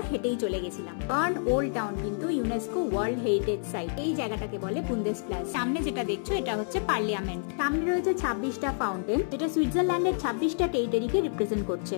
হেঁটেই চলে গেছিলাম। বার্ন ওল্ড টাউন কিন্তু ইউনেস্কো ওয়ার্ল্ড হেরিটেজ সাইট। এই জায়গাটাকে বলে বুন্দেসপ্লাস। সামনে যেটা দেখছো এটা হচ্ছে পার্লিয়ামেন্ট। সামনে রয়েছে 26টা ফাউন্টেন, যেটা সুইজারল্যান্ডের 26টা টেরিটরিকে রিপ্রেজেন্ট করছে।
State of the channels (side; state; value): right; silent; digital silence